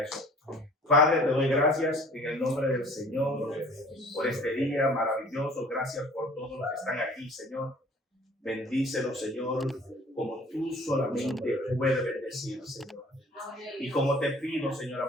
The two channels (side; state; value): both; normal; correlation 0.50